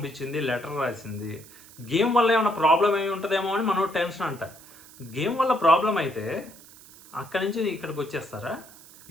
లెటర్ రాసింది. గేమ్ వల్ల ఏమైనా ప్రాబ్లం ఏమి ఉంటుందేమో అని మనోడు టెన్షన్ అంట. గేమ్ వల్ల ప్రాబ్లం అయితే అక్కడి నుంచి ఇక్కడికి వచ్చేస్తారా?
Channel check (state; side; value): noise; right; hiss, 21 dB below the sound